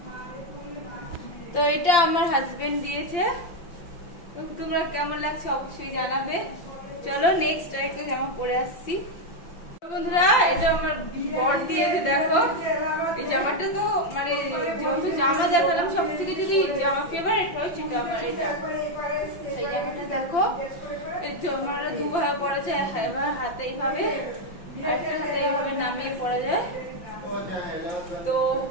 তো এটা আমার হাজবেন্ড দিয়েছে, তোমরা কেমন লাগছে অবশ্যই জানাবে। চলো নেক্সট আরেকটা জামা পরে আসছি বন্ধুরা, এটা আমার বর দিয়েছে। দেখো এই জামাটা তো মানে যেহেতু জামা দেখালাম, সব থেকে যদি জামা ফেভারিট হয় সেটা আমার এটা। এই জামাটা দেখো আমার দুভাবে পরা যায়, এবার হাতে এইভাবে, একটা হাতে এইভাবে নামিয়ে পরা যায়। তো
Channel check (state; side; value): late; right; 5.8 ms